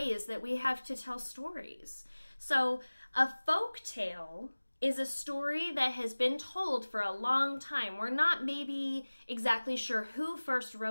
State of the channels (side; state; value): both; inverted; correlation -1.00